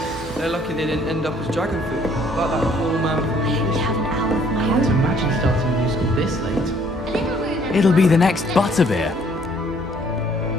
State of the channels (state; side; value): normal; both; correlation 0.61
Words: They're lucky they didn't end up as dragon food, like that poor man from the You have an hour of my I can't own. imagine starting a new school this late. It'll be the next Butterbeer.